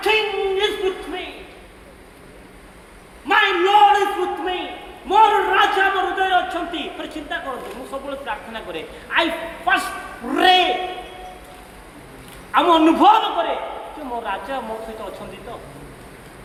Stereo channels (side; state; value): both; identical; correlation 1.00